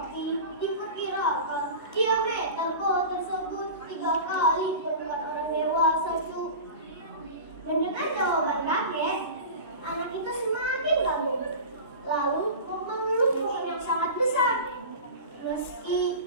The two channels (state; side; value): inverted; both; correlation -0.32